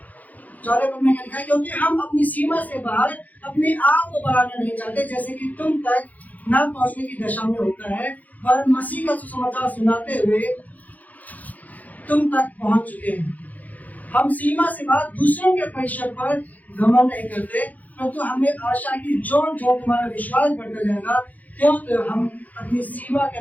4 पद में लिखा है, क्योंकि हम अपनी सीमा से बाहर अपने आप को बढ़ाना नहीं चाहते, जैसे कि तुम तक न पहुंचने की दशा में होता है, पर मसीह का सुसमाचार सुनाते हुए तुम तक पहुंच चुके हैं। हम सीमा से बाहर दूसरों के परिश्रम पर घमंड नहीं करते, परंतु हमें आशा की जो तुम्हारा विश्वास बढ़ता जाएगा, क्यों तो हम अपनी सीमा के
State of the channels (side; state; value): right; late; 0.079 ms